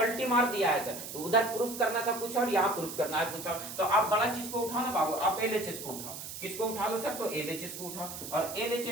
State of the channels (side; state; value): right; noise; hiss, 9 dB below the sound